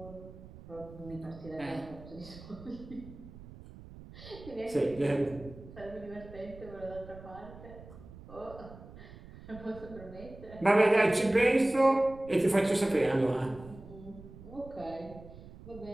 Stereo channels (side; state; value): right; noise; rumble, 17 dB below the sound